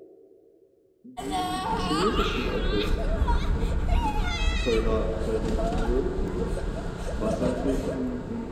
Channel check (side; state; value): both; identical; correlation 1.00